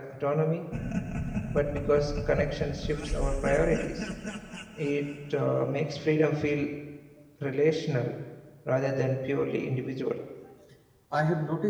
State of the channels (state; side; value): identical; both; correlation 1.00